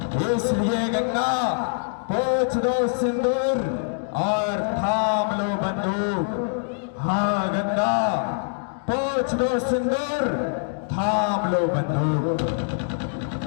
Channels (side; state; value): right; silent; digital silence